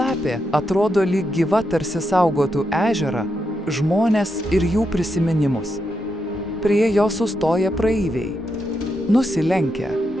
atrodo lyg gyva, tarsi saugotų ežerą, žmones ir jų prisiminimus. Prie jo sustoja praeiviai. Nusilenkia.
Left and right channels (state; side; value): normal; both; correlation 0.83